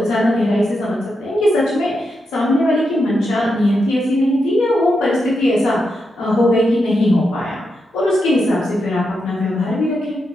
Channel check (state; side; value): normal; both; correlation 0.85